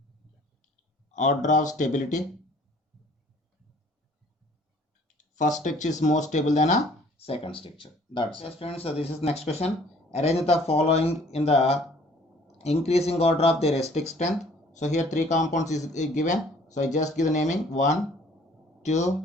first structure is more stable than a second structure. That's it friends. So this is next question. Arrange the following in the increasing order of their acidic strength. So here three compounds is given. So I just give the naming 1, 2,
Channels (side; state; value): both; normal; correlation 0.56